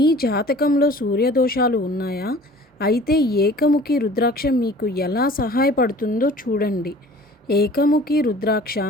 జాతకంలో సూర్యదోషాలు ఉన్నాయా? అయితే ఏకముఖి రుద్రాక్ష మీకు ఎలా సహాయపడుతుందో చూడండి. ఏకముఖి రుద్రాక్ష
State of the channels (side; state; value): both; normal; correlation 0.46